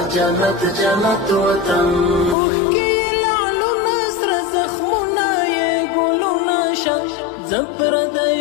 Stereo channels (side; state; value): right; drops out; at 2.4 s